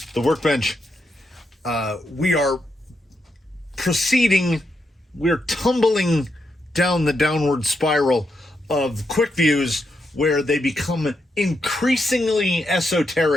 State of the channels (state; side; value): normal; both; correlation 0.82